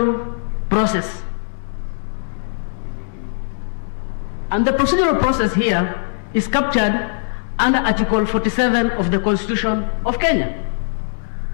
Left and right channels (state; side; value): silent; right; digital silence